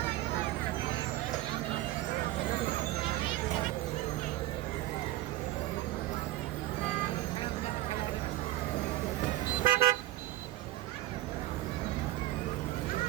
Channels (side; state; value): left; quieter; 16.4 dB